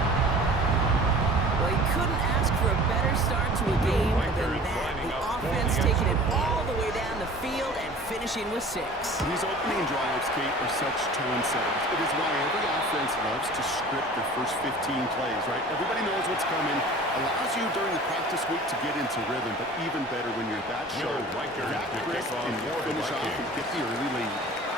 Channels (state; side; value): normal; both; correlation 0.44